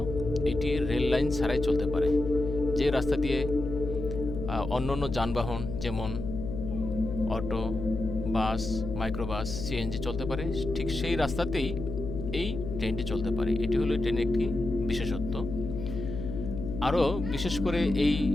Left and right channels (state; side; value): noise; left; hum, 6 dB below the sound